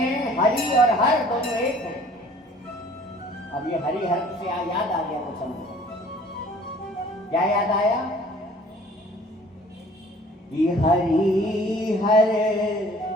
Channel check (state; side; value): normal; both; correlation 0.52